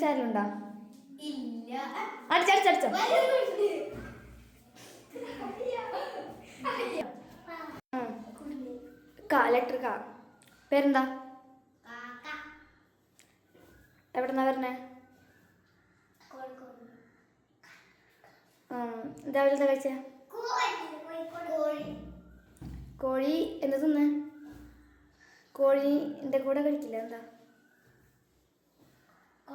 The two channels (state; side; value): identical; both; correlation 1.00